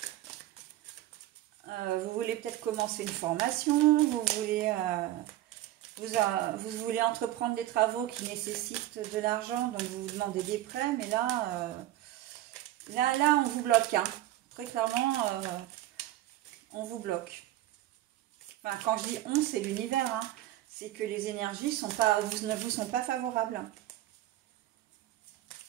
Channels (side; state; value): left; quieter; 14.7 dB